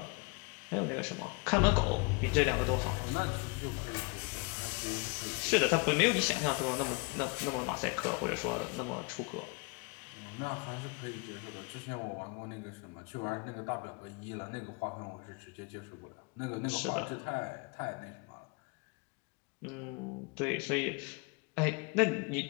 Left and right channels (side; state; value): right; quieter; 30.7 dB